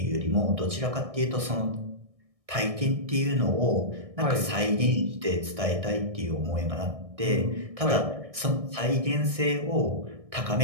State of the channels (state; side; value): late; left; 1.6 ms